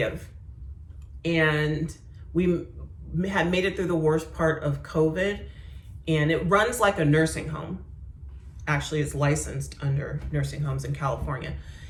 And we had made it through the worst part of COVID. And it runs like a nursing home. Actually, it's licensed under nursing homes in California.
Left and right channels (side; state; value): both; identical; correlation 1.00